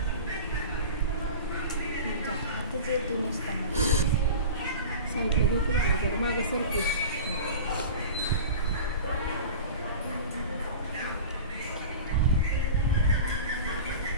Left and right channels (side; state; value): both; inverted; correlation -0.35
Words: साईडला घेतली मागे सरकी.